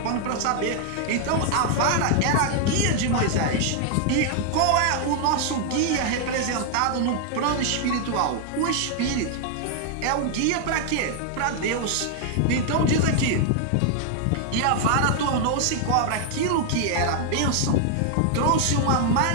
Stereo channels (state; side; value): different; both; correlation 0.00